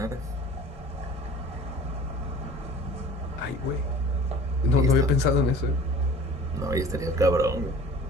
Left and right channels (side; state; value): both; normal; correlation 0.45